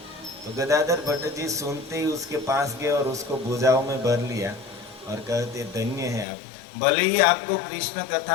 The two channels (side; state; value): right; drops out; at 6.2 s